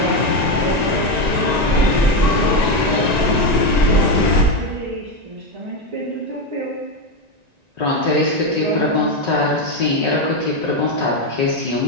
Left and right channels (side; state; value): left; late; 1.9 ms